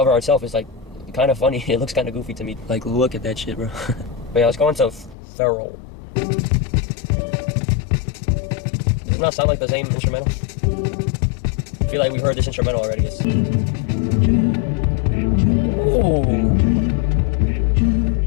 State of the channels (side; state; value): right; drops out; at 5.2 s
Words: art itself is, like, kind of funny. It looks kind of goofy to me. Like, look at that shit, bro. But yeah, let's go into Feral. Does it not sound like the same instrumental? I feel like we've heard this instrumental already. Oh,